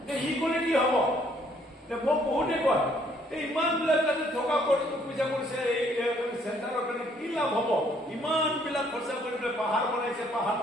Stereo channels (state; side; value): normal; both; correlation 0.65